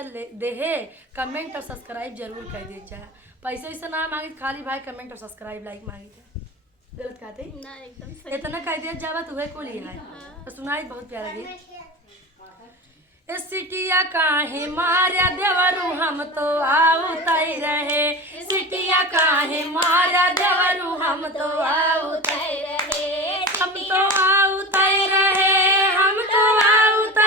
देहे कमेंट और सब्सक्राइब जरूर कर दे जाए। पैसे वैसे ना मांगी, खाली भाई कमेंट और सब्सक्राइब लाइक मांगी थे। गलत कहते ना, एकदम सही। इतना कह दिया जावा तुम्हें को लिया है। हाँ। तो सुनाई बहुत प्यारा गीत। सिटिया काहे मारा देवरू हम तो आउतई रहे। सिटिया काहे मारा देवरू हम तो आउतई रहे। हम तो आउतई रहे, हम तो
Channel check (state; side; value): normal; both; correlation 0.30